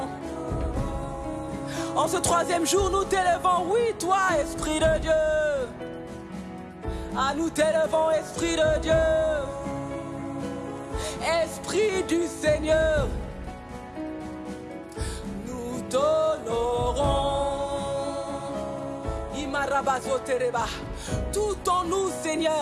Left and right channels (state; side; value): identical; both; correlation 1.00